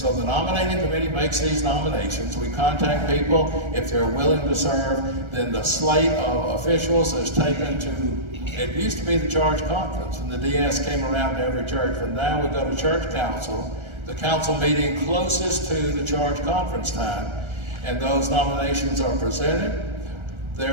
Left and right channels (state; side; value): late; left; 1.3 ms